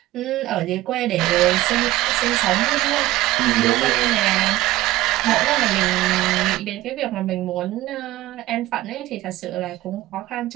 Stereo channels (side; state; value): left; quieter; 16.8 dB